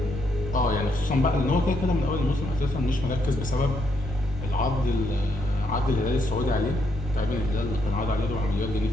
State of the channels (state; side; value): normal; both; correlation 0.76